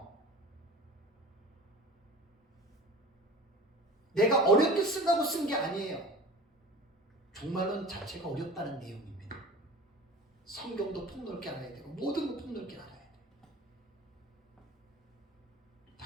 내가 어렵게 쓴다고 쓴 게 아니에요. 종말론 자체가 어렵다는 내용입니다. 성경도 폭넓게 알아야 되고 모든 거 폭넓게 알아야 돼요.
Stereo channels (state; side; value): normal; both; correlation 0.39